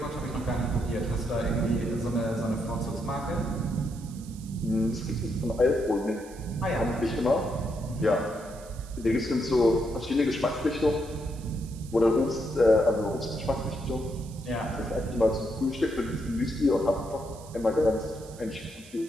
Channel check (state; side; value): noise; right; hiss, 21 dB below the sound